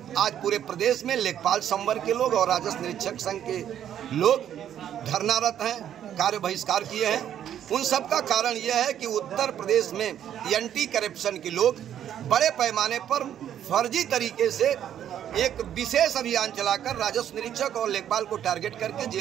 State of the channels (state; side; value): quieter; left; 10.2 dB